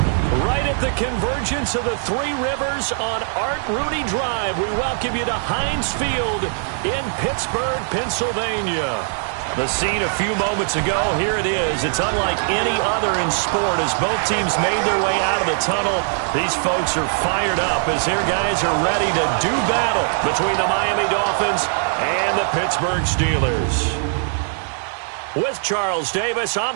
Right at the convergence of the Three Rivers on Art Rooney Drive, we welcome you to Heinz Field in Pittsburgh, Pennsylvania. The scene a few moments ago, here it is. It's unlike any other in sport as both teams made their way out of the tunnel. These folks are fired up as their guys are ready to do battle between the Miami Dolphins and the Pittsburgh Steelers. With Charles Davis,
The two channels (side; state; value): left; silent; digital silence